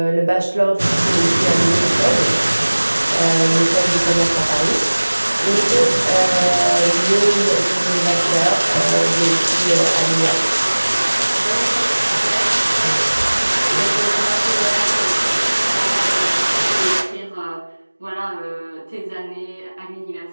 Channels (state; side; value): inverted; both; correlation -1.00